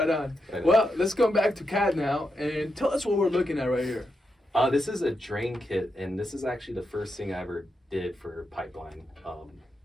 on. Well, let's go back to CAD now and tell us what we're looking at right here. This is a drain kit, and this is actually the first thing I ever did for Pipeline.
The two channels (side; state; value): both; normal; correlation 0.85